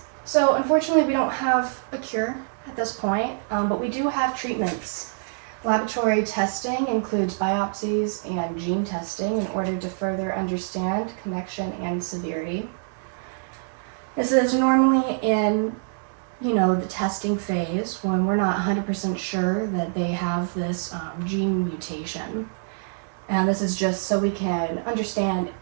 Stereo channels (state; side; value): silent; left; 62 dB below the other